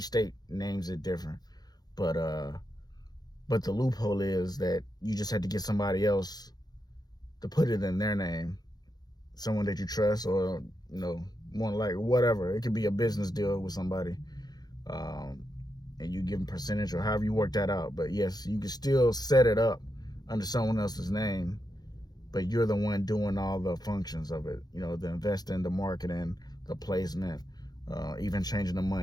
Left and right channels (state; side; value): late; right; 0.19 ms